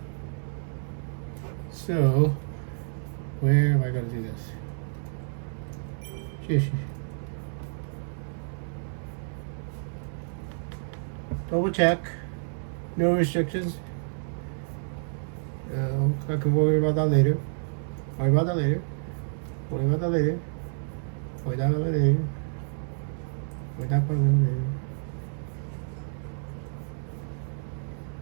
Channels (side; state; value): left; silent; digital silence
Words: So, where am I going to do this? Sheesh. Double check. No restrictions. I can worry about that later. Worry about that later. Worry about that later. Worry about that later. Worry about that later.